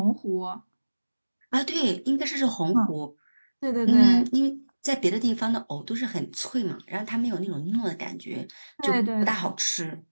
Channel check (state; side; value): inverted; both; correlation -1.00